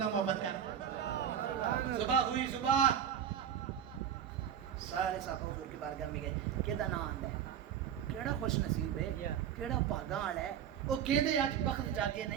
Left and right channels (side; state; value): left; quieter; 9.1 dB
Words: محبت کر صبح ہوئی صبح سارے صاحب حضور کی بارگاہ میں گئے کیدا نام آندا ہے کیڑا خوش نصیب ہے کیڑا بھاگاں والا ہے وہ کہدے اج بخت جاگے